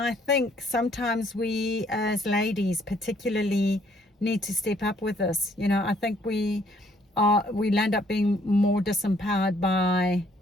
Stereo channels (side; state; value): both; normal; correlation 0.65